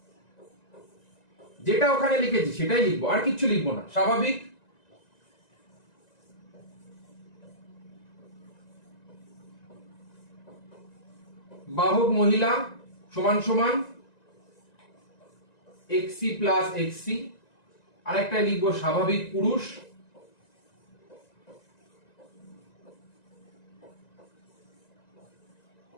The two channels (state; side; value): late; right; 1.9 ms